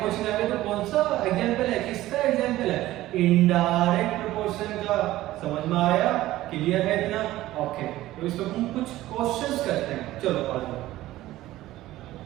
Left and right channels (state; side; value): quieter; left; 15.8 dB